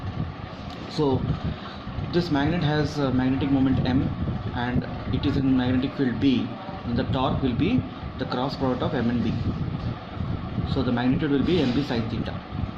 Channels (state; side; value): identical; both; correlation 1.00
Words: So this magnet has a magnetic moment M and it is in magnetic field B, and the torque will be the cross product of M and B. So the magnitude will be MB sin theta.